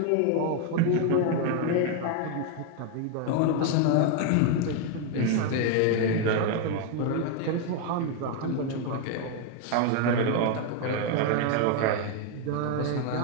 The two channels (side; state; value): both; different; correlation 0.01